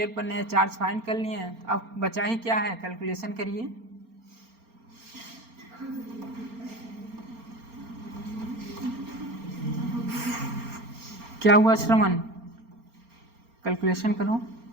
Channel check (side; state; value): left; late; 4.3 ms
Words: पर नए चार्ज फाइंड कर लिए। अब बचा ही क्या है, कैलकुलेशन करिए। क्या हुआ श्रवण? कैलकुलेशन करो।